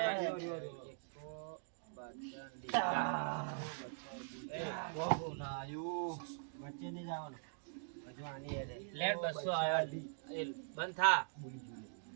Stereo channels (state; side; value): silent; left; digital silence